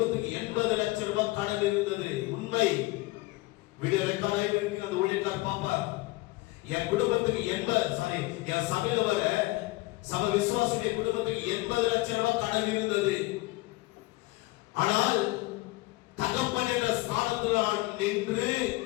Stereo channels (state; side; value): quieter; right; 21.2 dB